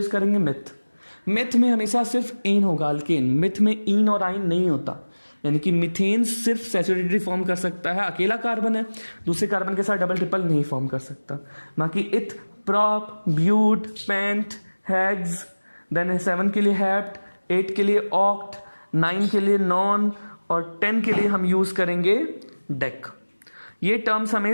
करेंगे, मिथ। मिथ में हमेशा सिर्फ इन होगा, अल्केन। मिथ में इन और आइन नहीं होता, यानी कि मीथेन सिर्फ सैचुरेटेड फॉर्म कर सकता है, अकेला कार्बन है, दूसरे कार्बन के साथ डबल ट्रिपल नहीं फॉर्म कर सकता। बाकी eth, prop, but, pent, hex, then 7 के लिए हेप्ट, 8 के लिए ऑक्ट, 9 के लिए नॉन और 10 के लिए हम यूज करेंगे डेक। ये टर्म्स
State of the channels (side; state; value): both; inverted; correlation -1.00